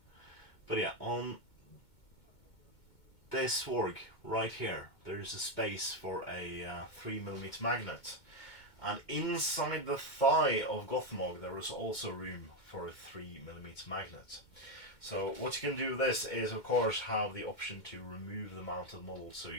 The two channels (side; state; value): right; late; 2.2 ms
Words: but yeah, on this Warg right here, there is a space for a 3mm magnet, and inside the thigh of Gothmog there is also room for a 3mm magnet. So what you can do with this is, of course, have the option to remove the mounted model so